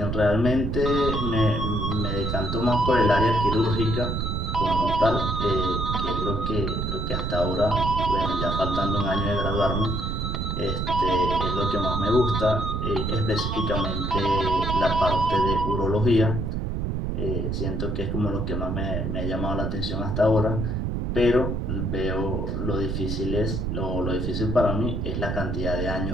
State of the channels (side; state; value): right; noise; rumble, 1 dB below the sound